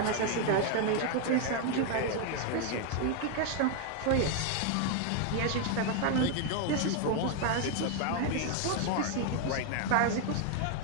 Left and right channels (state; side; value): different; both; correlation 0.01